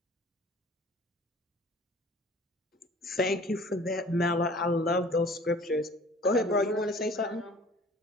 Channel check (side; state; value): both; normal; correlation 0.49